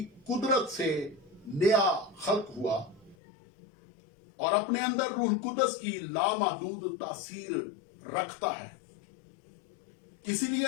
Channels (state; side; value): drops out; right; at 3.2 s